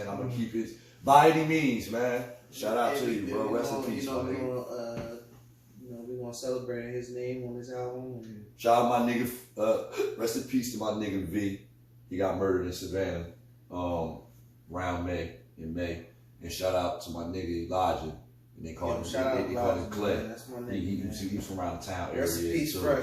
I'm gonna keep his by any means, man. Shout out to you, bro. Rest in peace, my nigga. We want to celebrate his name on this album. Shout out my nigga. Rest in peace to my nigga V. He got murdered in Savannah, around in May. And shout out to my nigga Elijah. And they called Shout out him Lux, Clay. man. That's my name. He was from around the town area. Rest in peace, so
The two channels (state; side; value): identical; both; correlation 1.00